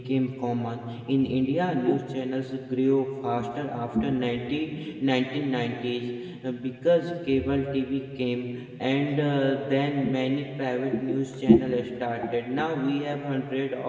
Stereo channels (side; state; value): both; identical; correlation 1.00